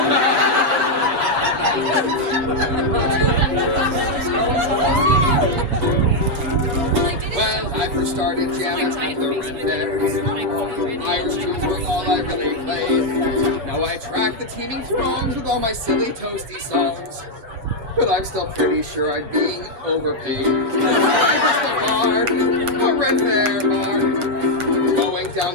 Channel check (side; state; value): left; late; 7.1 ms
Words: teeming throngs with all my silly toasty songs. But I'm still pretty sure I'm being overpaid. I'm just a bard, a red fair bard. Going